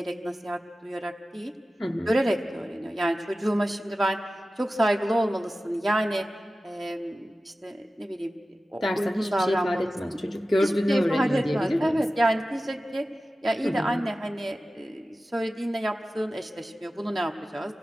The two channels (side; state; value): both; normal; correlation 0.95